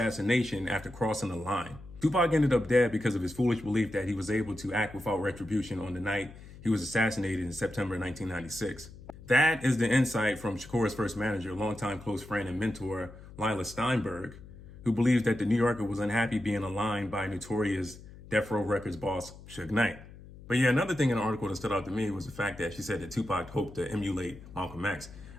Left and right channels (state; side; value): noise; left; hum, 17 dB below the sound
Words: after crossing the line. Tupac ended up dead because of his foolish belief that he was able to act without retribution on the night he was assassinated in September 1996. That is the insight from Shakur's first manager, longtime close friend and mentor, Lila Steinberg, who believes that the New Yorker was unhappy being aligned by notorious Death Row Records boss Suge Knight. But yeah, another thing in the article that stood out to me was the fact that she said that Tupac hoped to emulate Malcolm X.